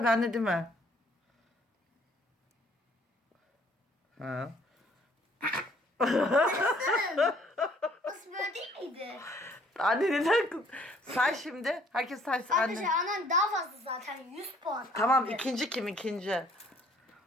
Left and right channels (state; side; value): normal; both; correlation 0.60